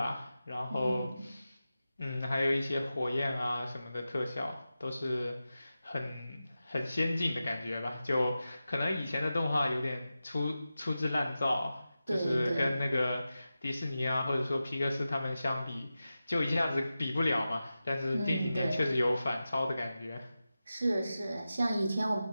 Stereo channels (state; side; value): inverted; both; correlation -0.93